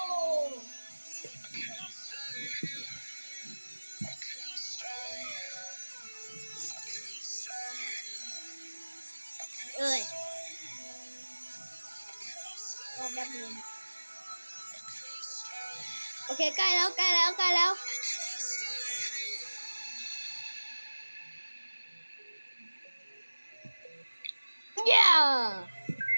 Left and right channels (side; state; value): both; inverted; correlation -1.00